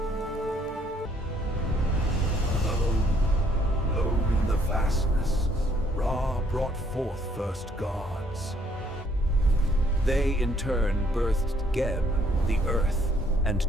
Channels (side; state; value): both; normal; correlation 0.66